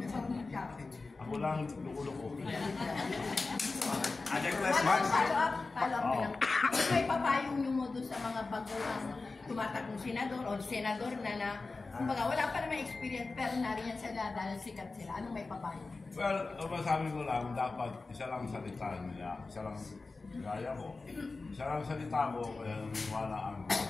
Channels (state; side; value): quieter; right; 3.7 dB